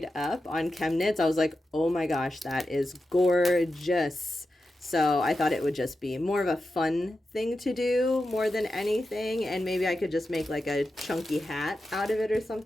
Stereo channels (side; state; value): both; normal; correlation 0.90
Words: up on Chemnitz, I was like, oh my gosh, that is gorgeous. So I thought it would just be more of a fun thing to do more than anything. And maybe I could just make like a chunky hat out of it or